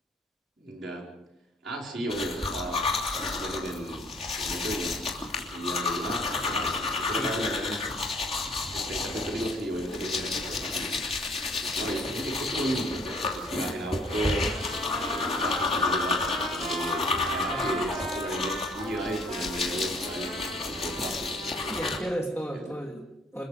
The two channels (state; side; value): normal; both; correlation 0.58